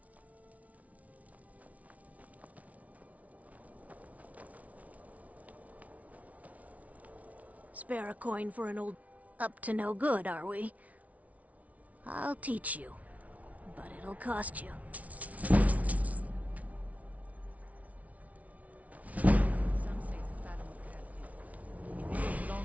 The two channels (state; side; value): late; left; 0.069 ms